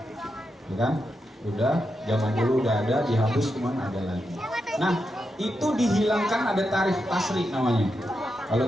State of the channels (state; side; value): normal; both; correlation 0.86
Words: Ya kan? Udah, zaman dulu udah ada, dihapus cuman ada lagi. Nah, itu dihilangkan, ada tarikh tasri namanya. Kalau